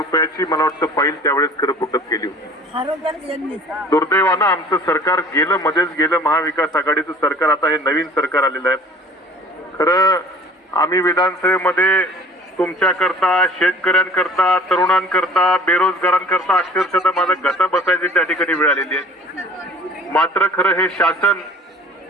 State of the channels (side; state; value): both; normal; correlation 0.47